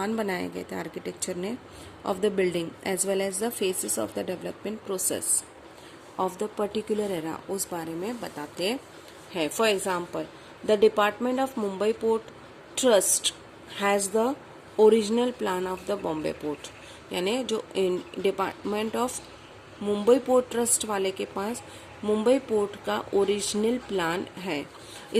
बनाए गए थे आर्किटेक्चर ने of the building as well as the phases of the development process of the particular era उस बारे में बताते हैं. For example, the Department of Mumbai Port Trust has the original plan of the Bombay Port. यानी जो department of Mumbai port trust वाले के पास Mumbai port का ओरिजिनल प्लान है.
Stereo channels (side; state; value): both; identical; correlation 1.00